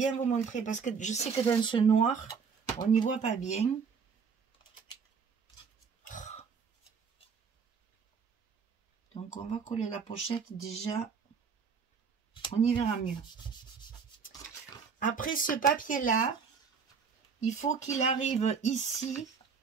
vous montrer parce que je sais que dans ce noir, on n'y voit pas bien. Donc, on va coller la pochette déjà. On y verra mieux. Après ce papier-là, il faut qu'il arrive ici,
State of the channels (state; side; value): quieter; left; 5.9 dB